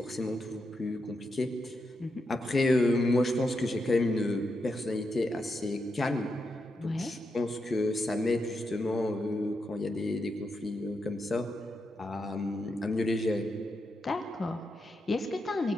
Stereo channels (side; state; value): both; normal; correlation 0.85